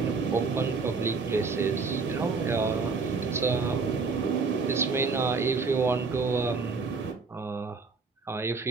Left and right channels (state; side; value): quieter; left; 4.5 dB